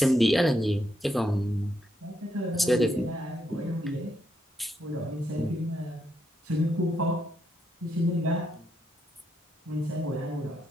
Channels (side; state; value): both; normal; correlation 0.79